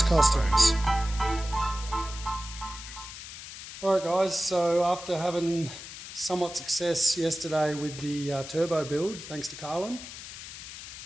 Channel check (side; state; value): left; noise; hiss, 12 dB below the sound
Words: life. Customs. Alright guys, so after having somewhat success yesterday with the turbo build, thanks to Carlin,